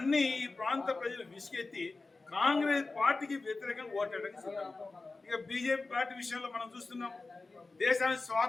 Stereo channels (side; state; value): right; quieter; 3.6 dB